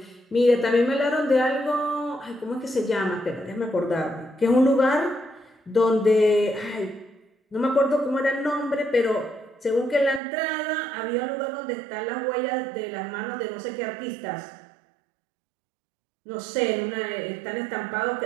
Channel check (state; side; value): drops out; left; at 10.2 s